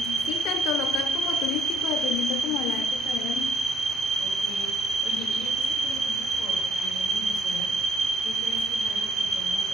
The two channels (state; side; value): normal; both; correlation 0.68